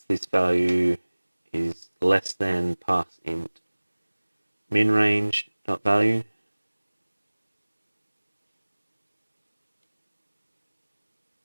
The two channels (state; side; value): inverted; both; correlation -1.00